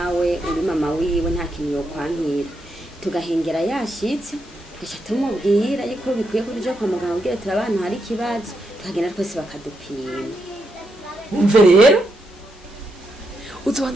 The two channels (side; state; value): both; normal; correlation 0.82